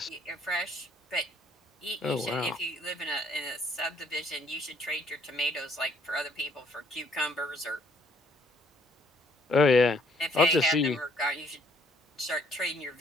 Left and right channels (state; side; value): normal; both; correlation 0.64